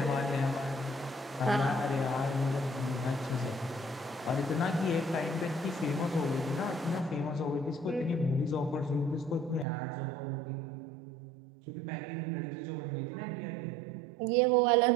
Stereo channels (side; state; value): left; drops out; at 9.7 s